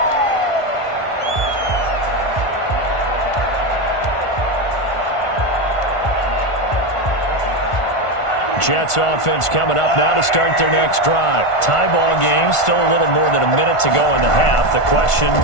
Jets offense coming up now to start their next drive. Tie ball game, still a little more than a minute to go in the half. The question,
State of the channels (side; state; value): right; late; 1.5 ms